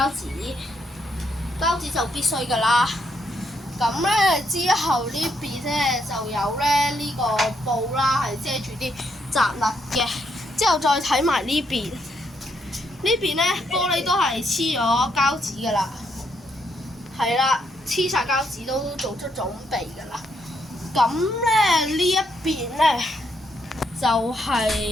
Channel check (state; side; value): normal; both; correlation 0.76